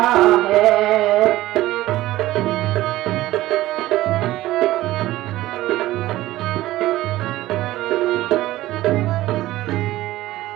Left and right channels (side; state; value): left; quieter; 16.2 dB